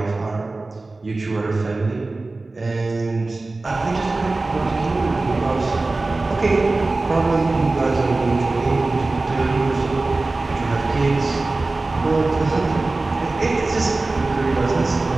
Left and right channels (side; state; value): left; quieter; 3.3 dB